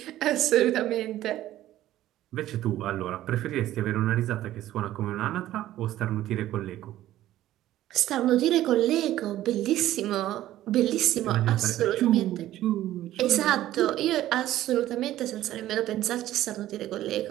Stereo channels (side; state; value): left; quieter; 13.9 dB